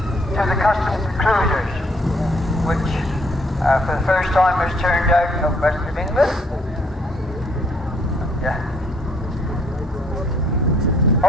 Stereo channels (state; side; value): normal; both; correlation 0.66